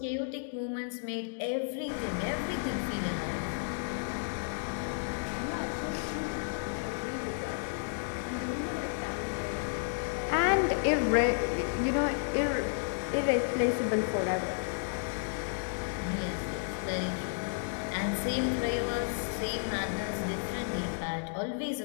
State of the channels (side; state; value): right; silent; digital silence